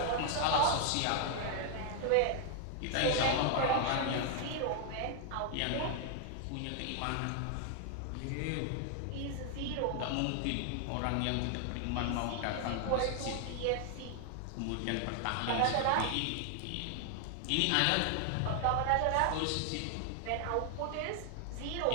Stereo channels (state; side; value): different; both; correlation 0.00